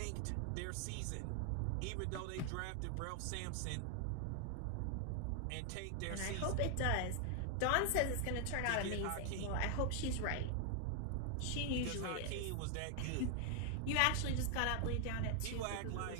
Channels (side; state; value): both; different; correlation 0.00